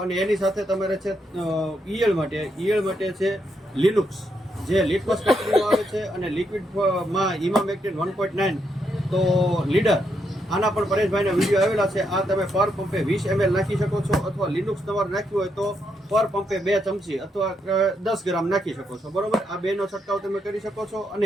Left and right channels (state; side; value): normal; both; correlation 0.79